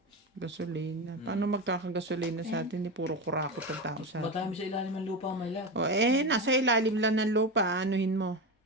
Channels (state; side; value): normal; both; correlation 0.19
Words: Gasolina. Paano magkakagasolina sa atin? Puro kurakot ang tao sa atin. Matami sa ilalim ng lupa, may lahat. O nasa ilalim lang ng lupa. Anuhin mo.